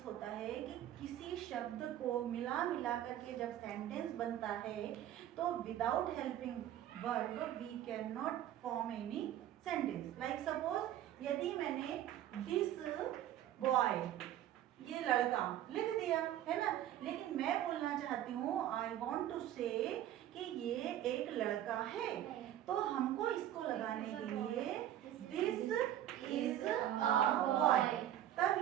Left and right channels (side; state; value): left; quieter; 12.0 dB